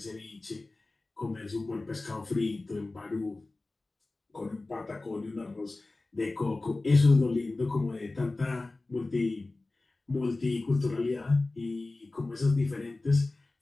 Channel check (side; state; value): right; quieter; 3.1 dB